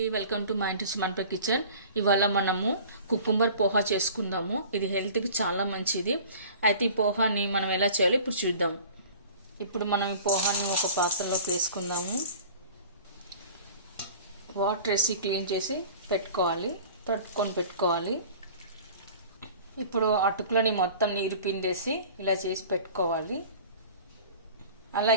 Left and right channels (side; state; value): both; inverted; correlation -0.43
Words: welcome to మా ఇంటి మనప కిచెన్. ఇవాళ మనము కుకుంబర్ పోహా చేసుకుందాము. ఇది హెల్త్కి చాలా మంచిది. అయితే ఈ పోహాని మనం ఎలా చేయాలో ఇప్పుడు చూద్దాం. ఇప్పుడు మనం ఈ పోహాని ఒక పాత్రలోకి వేసుకుందాము. వాటర్ వేసి క్లీన్ చేసి పెట్టుకోవాలి, తట్టుకొని పెట్టుకోవాలి. ఇప్పుడు అటుకులని మొత్తం నీరు పిండేసి ఇలా చేసి పెట్టుకోవాలి.